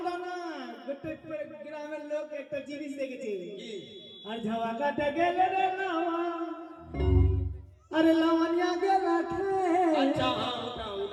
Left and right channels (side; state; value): both; identical; correlation 1.00